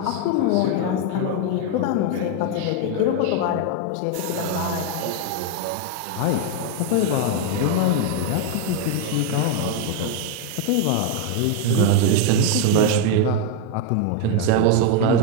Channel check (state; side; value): different; both; correlation 0.01